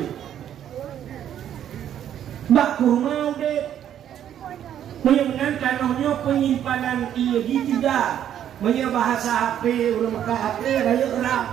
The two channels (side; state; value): left; quieter; 10.3 dB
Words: Bak kurma udik, menyenangkan tanahnya penyimpanan ia di tiga. Punya bahasa HP, urang Mekah HP,